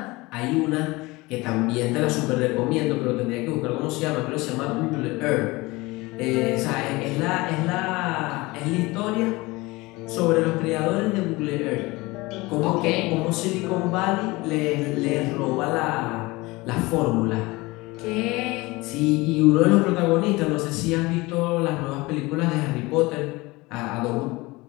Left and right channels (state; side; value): quieter; right; 22.3 dB